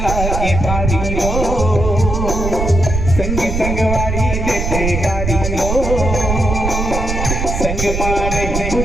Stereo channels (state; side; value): noise; right; rumble, 2 dB below the sound